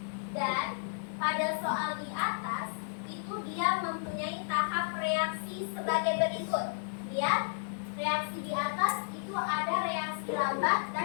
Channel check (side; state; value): right; silent; 56 dB below the other